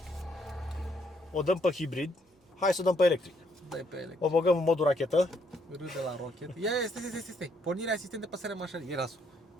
o dăm pe hibrid, hai să o dăm pe electric. Dai pe electric. O băgăm în modul rachetă. Râde la rocket. Ia, stai. Pornirea asistent de păsare mașinii. Ia lasul.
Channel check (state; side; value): normal; both; correlation 0.71